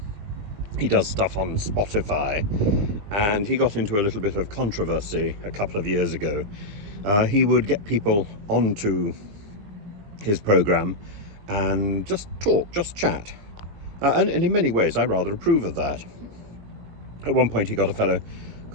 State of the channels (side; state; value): left; late; 20 ms